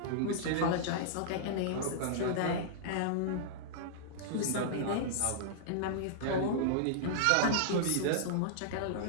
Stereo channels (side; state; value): both; different; correlation -0.02